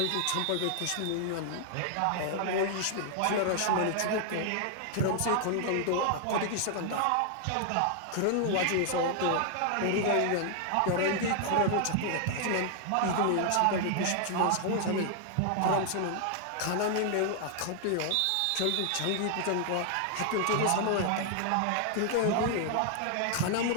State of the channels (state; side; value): different; both; correlation 0.00